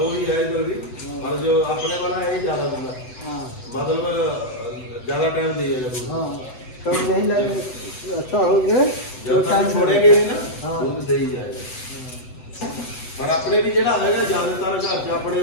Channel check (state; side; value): late; right; 7.9 ms